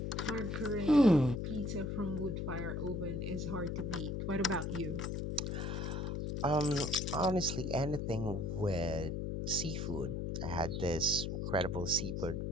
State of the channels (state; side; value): noise; left; hum, 2 dB below the sound